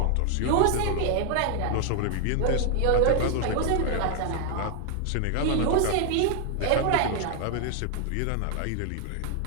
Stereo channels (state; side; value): different; both; correlation 0.00